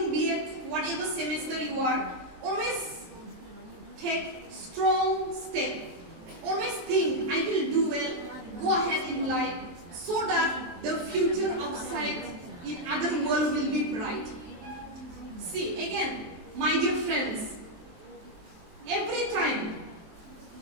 B.Ed, whatever semester you are, always take strong step. Always think, I will do well, go ahead in life, so that the future outside in other world will be bright. See, again, my dear friends, every time,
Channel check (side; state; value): left; late; 23 ms